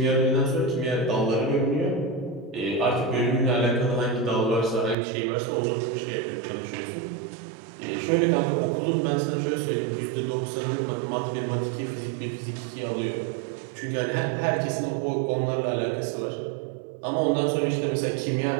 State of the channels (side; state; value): left; drops out; at 5.0 s